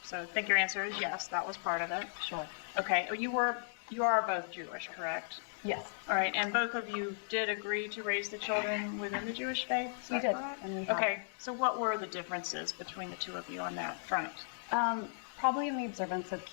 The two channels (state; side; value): silent; right; digital silence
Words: So I think your answer is yes, that was part of it. Sure. Okay, you are both Jewish, correct? Yes. All right, and both of you did agree to raise the children within the Jewish faith? We did. And we have. Okay, so what were the differences between the two of you on that front? Probably in the observance of